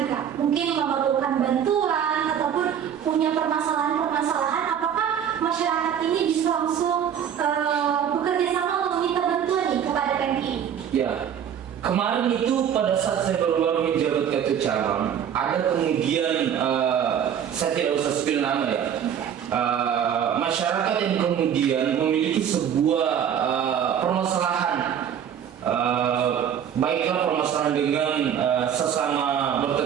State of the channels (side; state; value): left; quieter; 8.8 dB